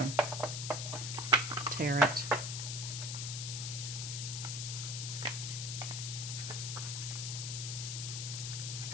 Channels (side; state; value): left; noise; hiss, 3 dB below the sound